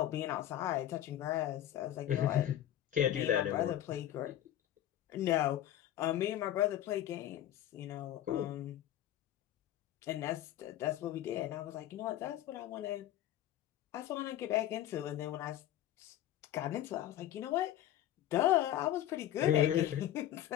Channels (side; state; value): right; quieter; 12.4 dB